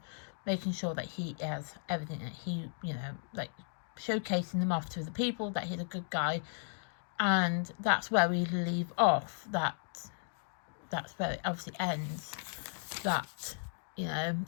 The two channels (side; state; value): right; silent; digital silence